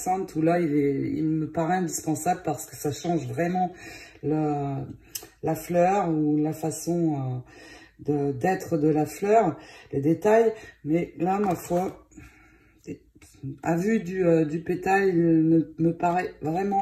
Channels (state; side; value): identical; both; correlation 1.00